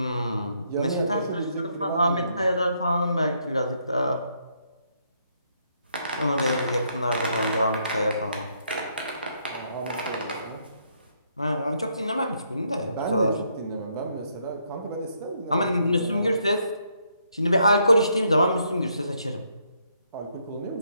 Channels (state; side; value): inverted; both; correlation -0.74